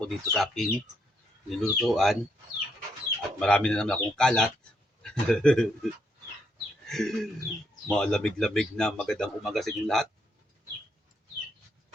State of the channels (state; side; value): normal; both; correlation 0.76